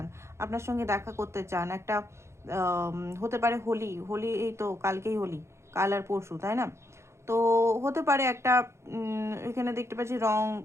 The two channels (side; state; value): left; late; 0.13 ms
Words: আপনার সঙ্গে দেখা করতে চান। একটা হতে পারে হোলি, হোলি এই তো কালকেই হোলি, কাল আর পরশু, তাই না? তো হতে পারে একটা এখানে দেখতে পাচ্ছি রং,